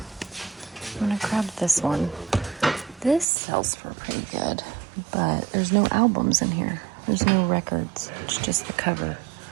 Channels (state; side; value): drops out; left; at 3.2 s